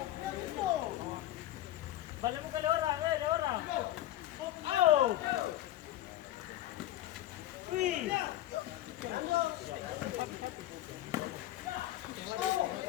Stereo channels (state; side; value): quieter; right; 14.0 dB